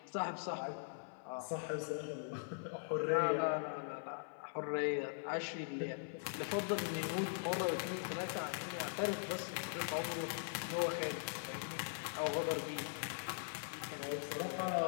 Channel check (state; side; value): silent; right; 50 dB below the other